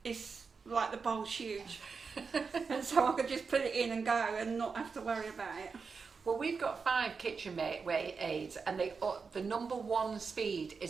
is like the bowl's huge, and so I could just put it in and go and not have to worry about it. Well, we've got 5 KitchenAid aids, and the number 1 speed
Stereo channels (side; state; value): left; quieter; 5.1 dB